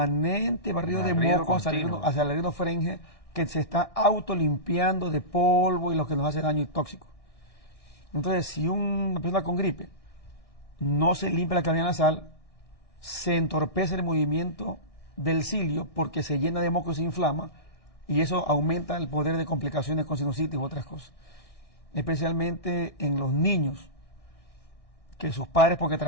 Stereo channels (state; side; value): late; right; 1.6 ms